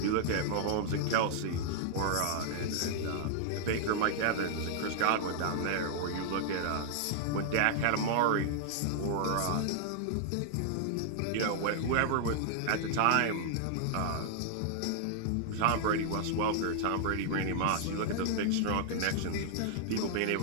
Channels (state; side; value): different; both; correlation 0.00